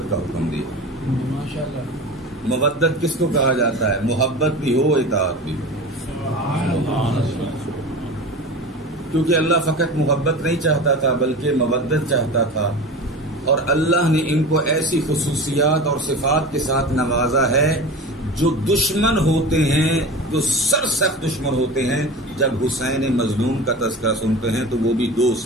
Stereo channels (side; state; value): both; normal; correlation 0.32